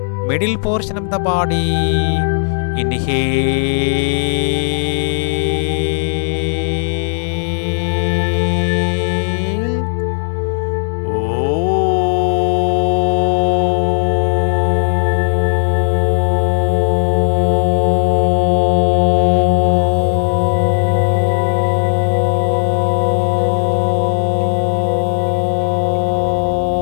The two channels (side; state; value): right; silent; digital silence